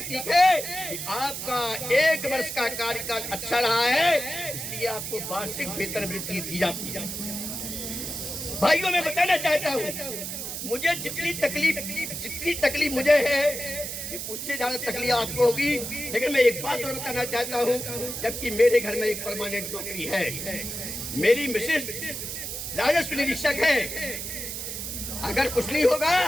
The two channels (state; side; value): noise; right; hiss, 6 dB below the sound